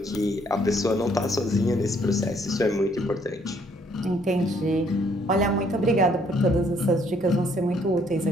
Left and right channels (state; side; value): normal; both; correlation 0.66